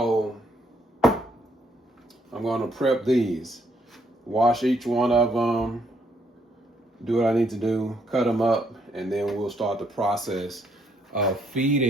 I'm gonna prep these. Wash each one of them. Do what I need to do. Cut them up. And then we'll start the process of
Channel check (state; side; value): normal; both; correlation 0.71